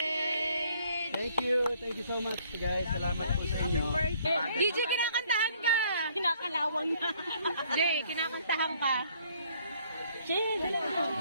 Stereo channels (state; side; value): inverted; both; correlation -0.62